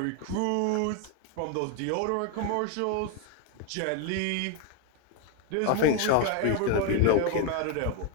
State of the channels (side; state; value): both; different; correlation 0.01